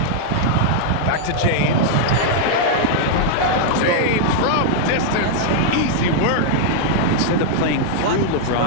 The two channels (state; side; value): different; both; correlation -0.01